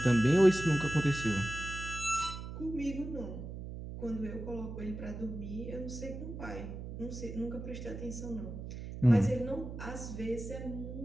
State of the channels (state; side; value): noise; right; hum, 9 dB below the sound